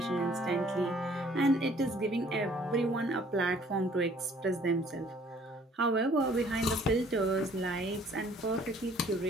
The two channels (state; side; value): normal; both; correlation 0.58